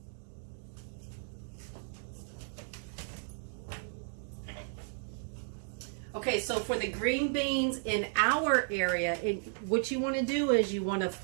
Okay, so for the green beans in our area, what you want to do is you want to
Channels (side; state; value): left; silent; 55 dB below the other